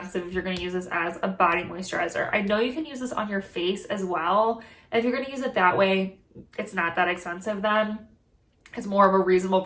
if you're gonna use this as a body moisturizer. I know you can use this on your face as well. And if you're gonna use it that way, it's not that expensive then. It's more of a reasonable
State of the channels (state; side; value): identical; both; correlation 1.00